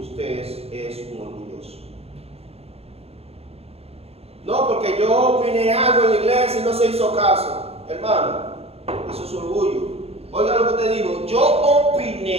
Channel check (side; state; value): left; late; 0.29 ms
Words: es un orgulloso. No, porque yo opiné algo en la iglesia y no se hizo caso. Hermano, eso es orgullo. Oiga lo que te digo, yo